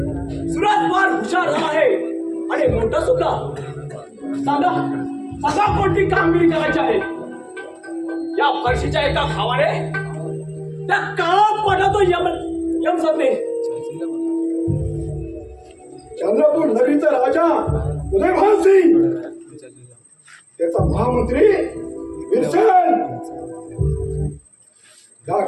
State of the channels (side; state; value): both; identical; correlation 1.00